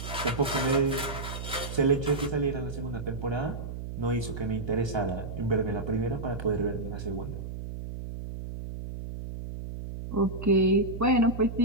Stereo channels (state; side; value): noise; right; hum, 8 dB below the sound